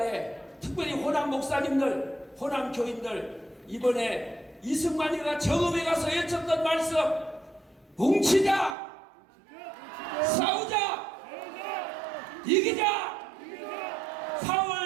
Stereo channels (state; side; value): drops out; left; at 8.8 s